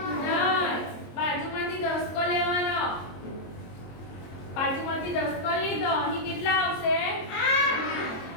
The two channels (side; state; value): right; late; 22 ms